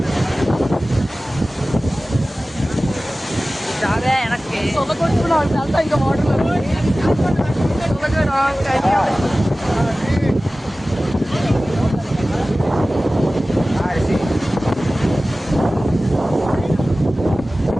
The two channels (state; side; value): normal; both; correlation 0.97